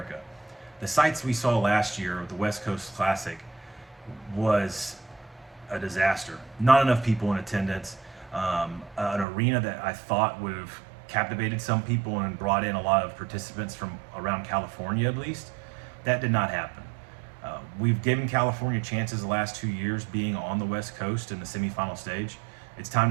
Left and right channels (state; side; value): drops out; left; at 9.2 s